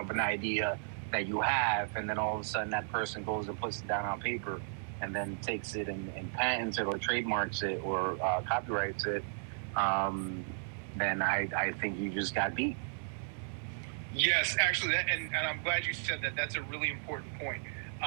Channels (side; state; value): left; silent; digital silence